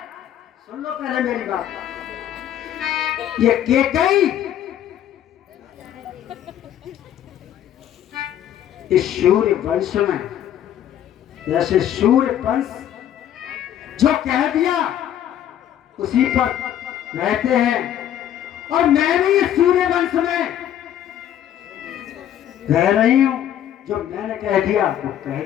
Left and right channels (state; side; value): quieter; right; 10.9 dB